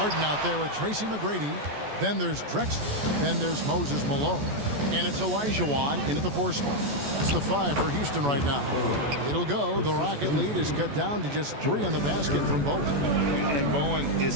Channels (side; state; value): left; late; 14 ms